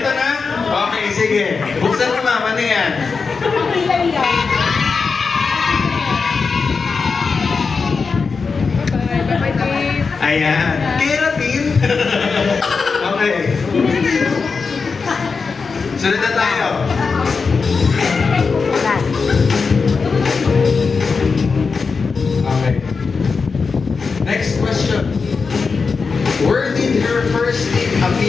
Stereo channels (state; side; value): quieter; right; 4.9 dB